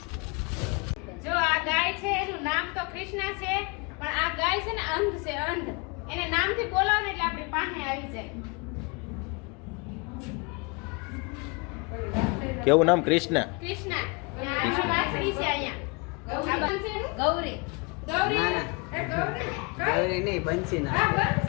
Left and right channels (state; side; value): quieter; right; 30.3 dB